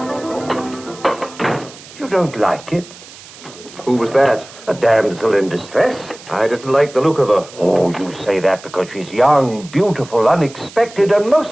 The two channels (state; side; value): noise; right; hiss, 19 dB below the sound